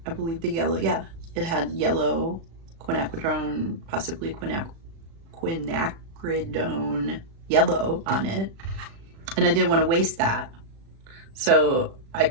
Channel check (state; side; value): late; left; 36 ms